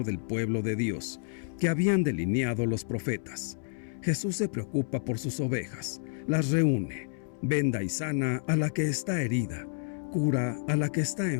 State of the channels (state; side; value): silent; right; 58 dB below the other